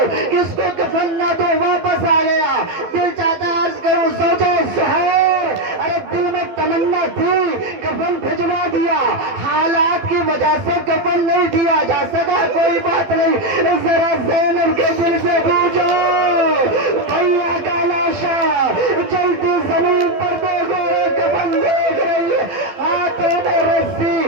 کس کو کفن نہ دو، واپس آ گیا۔ دل چاہتا ہے عرض کروں زوجہ زہیر، ارے دل میں تمنا تھی، کفن بھجوا دیا، حالات کی وجہ سے کفن نہیں دیا جا سکا، کوئی بات نہیں، ذرا زینب کے دل سے پوچھو، بھیا کا لاشا جلتی زمین پر دیکھو، کفن دیکھ رہی ہے، ہاتھوں میں رسی،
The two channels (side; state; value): left; late; 12 ms